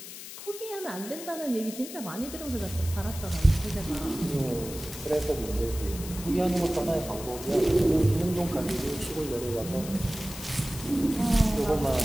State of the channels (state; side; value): noise; left; hiss, 12 dB below the sound